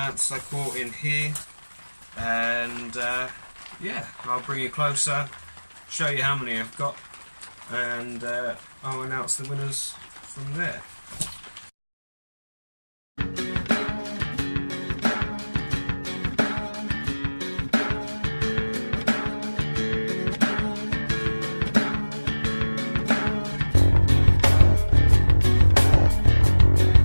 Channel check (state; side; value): inverted; both; correlation -1.00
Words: I caught in here, and yeah, I'll bring you closer, show you how many I've got, and I'll announce the winners from there.